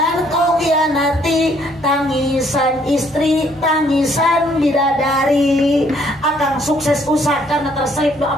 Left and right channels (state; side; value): normal; both; correlation 0.65